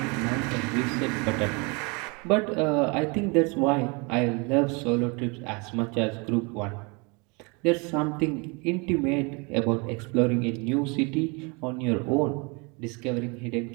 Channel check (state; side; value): quieter; left; 30.1 dB